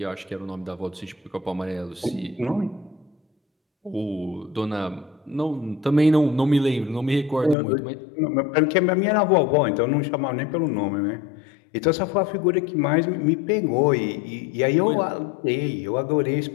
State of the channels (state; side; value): drops out; right; at 7.6 s